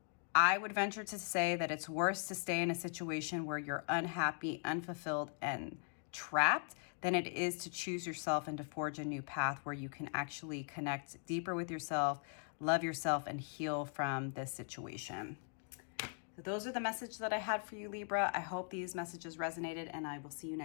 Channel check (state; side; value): silent; right; 51 dB below the other